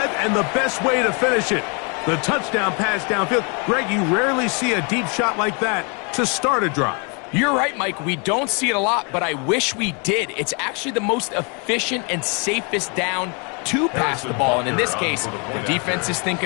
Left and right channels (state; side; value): quieter; right; 34.3 dB